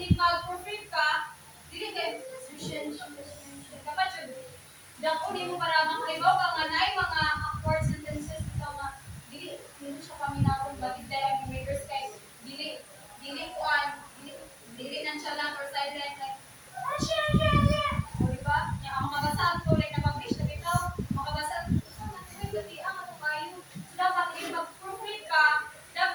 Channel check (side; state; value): both; identical; correlation 1.00